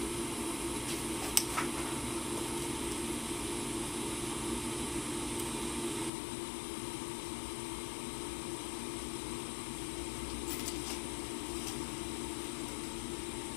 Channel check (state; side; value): drops out; right; at 6.1 s